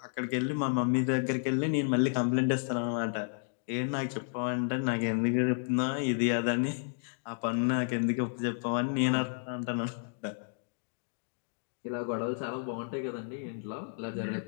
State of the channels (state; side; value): silent; right; 57 dB below the other